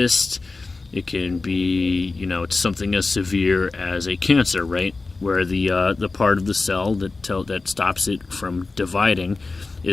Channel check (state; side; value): quieter; right; 3.7 dB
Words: It can be, it's something as severe as a cancer, right? Where the part of the cell that stops it from dividing